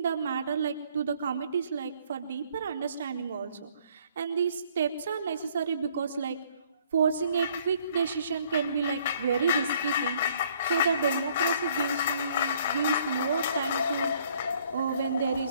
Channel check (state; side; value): inverted; both; correlation -0.62